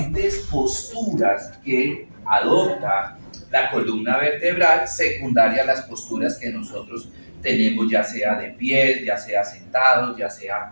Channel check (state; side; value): inverted; both; correlation -1.00